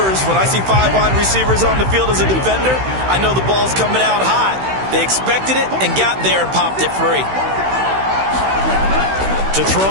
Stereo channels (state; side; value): late; left; 16 ms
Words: when I see 5 wide receivers on the field as a defender, I know the ball's coming out hot. They expected it and got there and popped it free. To throw